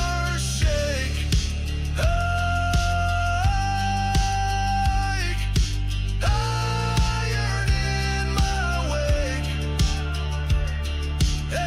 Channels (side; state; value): both; identical; correlation 1.00